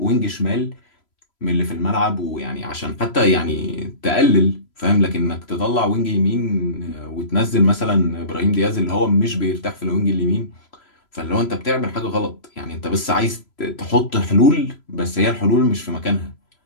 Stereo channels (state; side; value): late; right; 3.0 ms